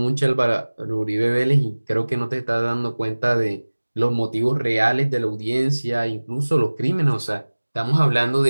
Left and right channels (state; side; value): inverted; both; correlation -1.00